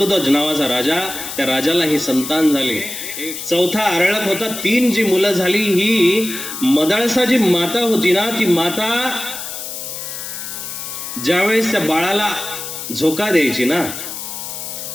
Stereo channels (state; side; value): noise; left; hiss, 8 dB below the sound